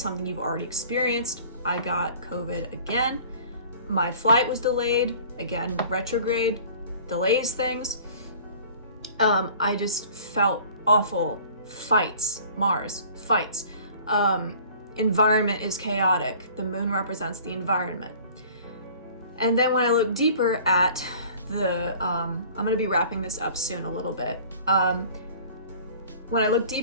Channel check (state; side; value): inverted; both; correlation -0.48